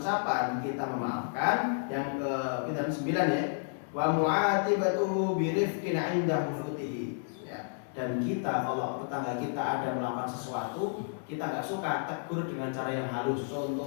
kita memaafkan. Yang ke-9 ya, wa mu'atibatuhu bi rifqin 'inda hufutihi. Dan kita kalau tetangga kita ada melakukan sesuatu, kita nggak suka, tegur dengan cara yang halus.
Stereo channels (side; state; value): right; silent; digital silence